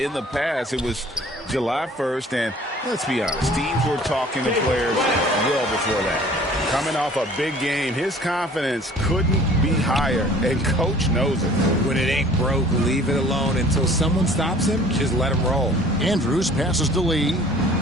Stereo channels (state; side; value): normal; both; correlation 0.50